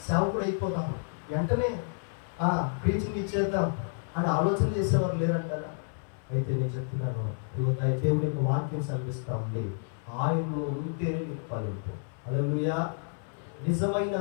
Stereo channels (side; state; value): right; silent; 58 dB below the other